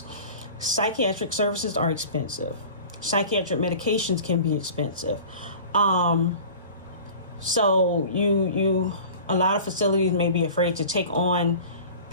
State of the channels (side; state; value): both; inverted; correlation -0.40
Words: Psychiatric services are expensive. Psychiatric medications can be expensive. So a lot of facilities may be afraid to take on